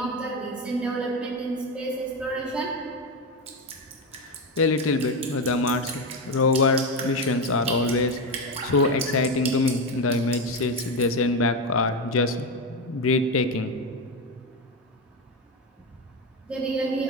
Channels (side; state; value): both; normal; correlation 0.14